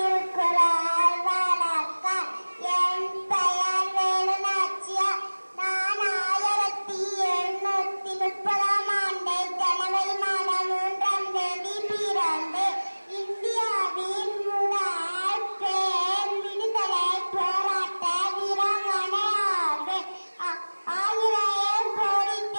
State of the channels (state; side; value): inverted; both; correlation -1.00